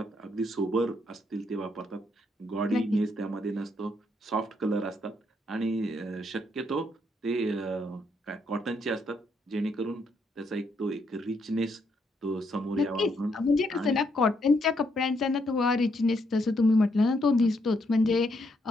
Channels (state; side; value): normal; both; correlation 0.75